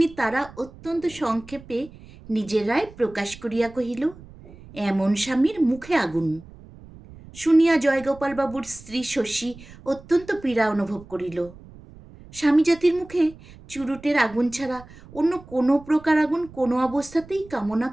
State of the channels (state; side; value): noise; right; rumble, 20 dB below the sound